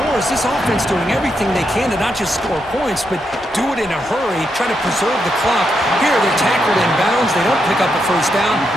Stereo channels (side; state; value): both; normal; correlation 0.82